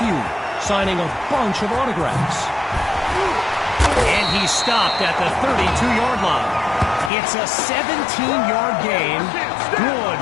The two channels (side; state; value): right; drops out; at 7.1 s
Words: signing a bunch of autographs. And he stopped at the 32-yard line. It's a 17-yard gain, good